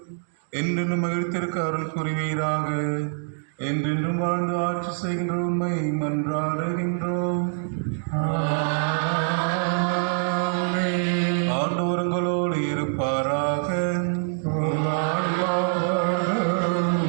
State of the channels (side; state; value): left; silent; digital silence